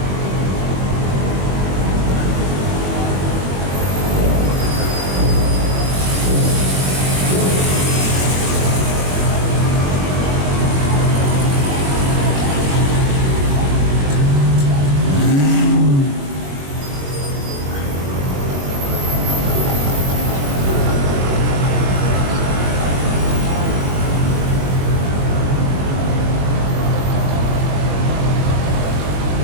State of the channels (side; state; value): left; late; 21 ms